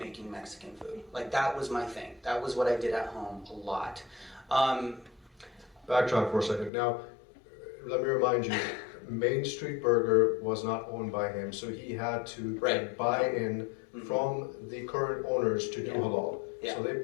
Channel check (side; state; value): right; drops out; at 6.7 s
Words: Mexican food. Like, that was my thing. That was what I did at home a lot. Backtrack for a second. Now, let me remind you, Main Street Burger was not owned by him, so he had to buy in from the current owners to do halal. Yeah. So they